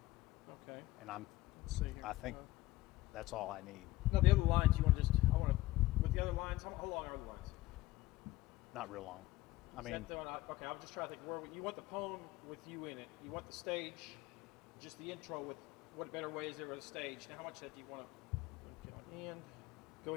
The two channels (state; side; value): quieter; right; 17.5 dB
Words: Okay. and Let's see here. I think that's all I need. No, the other lines you want to just. I want to. With the other lines, how long are the lines? Not real long. I Is mean, that the one okay, I'm just trying to think where you want the poem with you in it. You want the stage, just the intro with what better way is there with a stage. Now, how much of that do you want to? And go